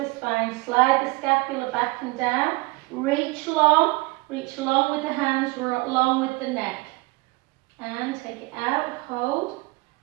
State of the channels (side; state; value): left; quieter; 24.0 dB